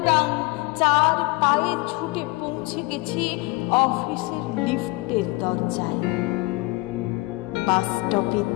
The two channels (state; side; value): quieter; right; 23.7 dB